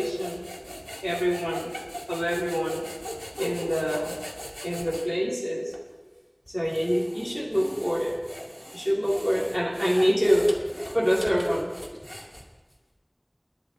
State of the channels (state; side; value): identical; both; correlation 1.00